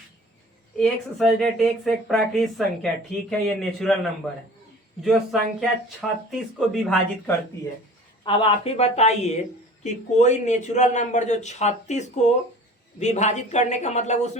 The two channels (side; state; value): both; normal; correlation 0.44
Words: x एक प्राकृत संख्या, ठीक है, ये नेचुरल नंबर है जो संख्या 36 को विभाजित करती है। अब आप ही बताइए कि कोई नेचुरल नंबर जो 36 को विभाजित करने का मतलब